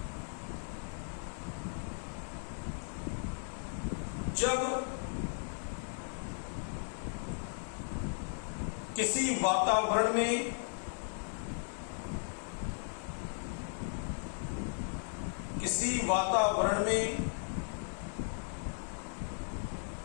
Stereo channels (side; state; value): right; silent; 53 dB below the other